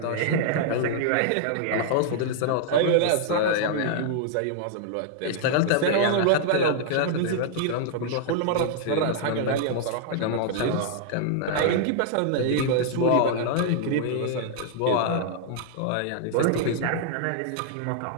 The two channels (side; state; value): both; different; correlation -0.01